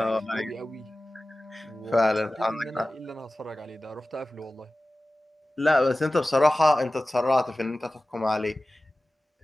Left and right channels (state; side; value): normal; both; correlation 0.96